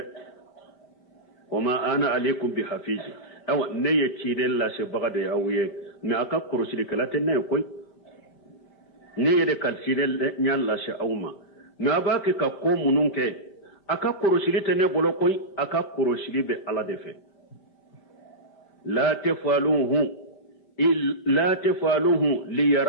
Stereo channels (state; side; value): late; right; 5.1 ms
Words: wama ana alaykum bi hafizi awa ne ye chidel la se bagade awye me aka kurusili kala tenne koy ne ye de kalsidel nyal la se awma na ba ke ka ko munun ke aka korosili tene bolo koy aka korosili be ala defe la tafaluhu li